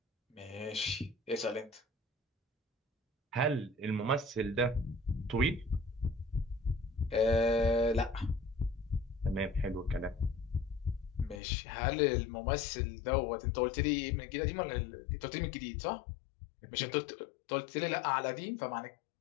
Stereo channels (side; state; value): right; drops out; at 11.4 s